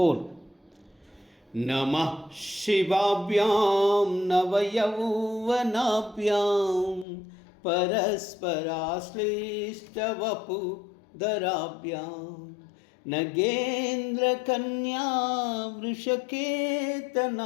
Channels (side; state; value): right; drops out; at 7.1 s